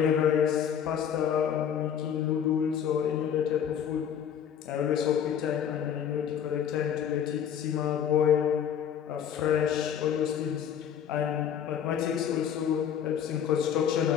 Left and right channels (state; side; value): quieter; right; 8.7 dB